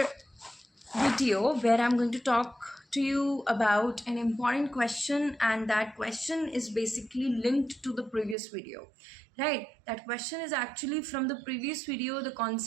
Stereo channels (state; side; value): drops out; left; at 8.3 s